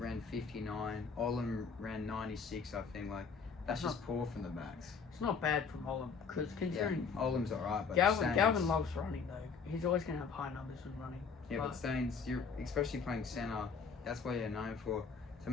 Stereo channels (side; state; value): right; quieter; 5.6 dB